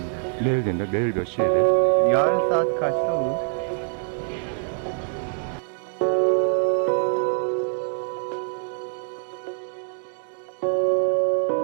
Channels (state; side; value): silent; left; 62 dB below the other